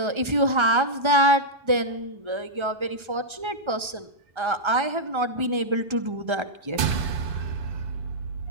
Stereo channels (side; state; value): left; late; 1.3 ms